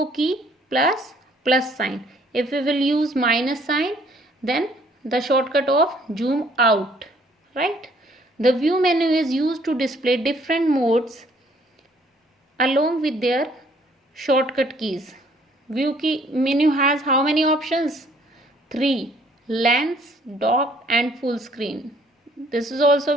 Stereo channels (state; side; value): normal; both; correlation 0.62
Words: key plus sign. If we will use minus sign, then the shortcut of zoom out, right? The view menu is used to display different modes along with their shortcut keys. View key menu has how many options? 3: lens, dock and full screen. This is